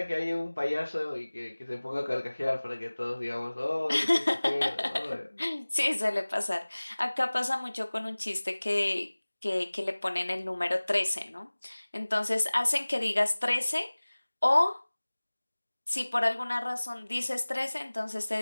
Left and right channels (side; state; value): both; inverted; correlation -1.00